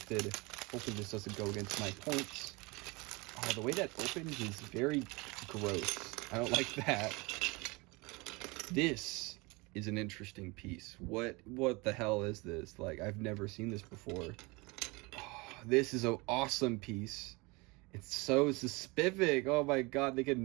Hopefully this doesn't go against my points. Oh, the way that opens is very gross. I don't like that. This is an interesting piece. What the hell is this? Like, I've never seen this before. Oh, this is an awesome piece. It's so specific. Oh my god, they could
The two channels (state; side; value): quieter; left; 25.9 dB